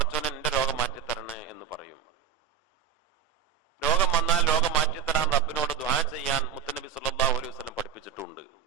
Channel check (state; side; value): quieter; left; 8.2 dB